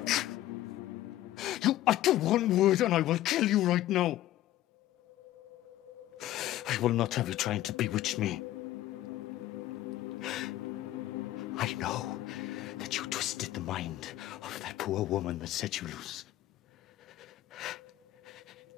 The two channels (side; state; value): right; quieter; 14.3 dB